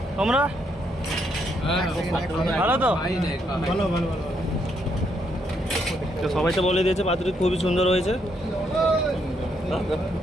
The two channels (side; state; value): both; normal; correlation 0.75